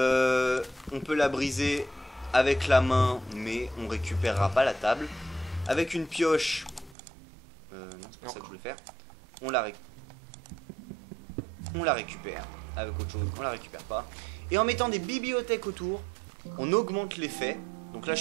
peut la briser avec la main, mais on récupérera pas la table. Avec une pioche, non, c'est pas ça que je voulais faire. On la récupère. Avec autre chose, on la récupère pas. Et en mettant des bibliothèques autour, on augmente l'effet. Donc là, je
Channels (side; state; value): left; drops out; at 7.0 s